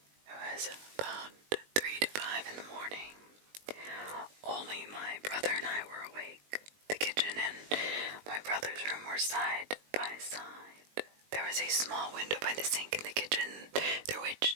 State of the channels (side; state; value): left; late; 20 ms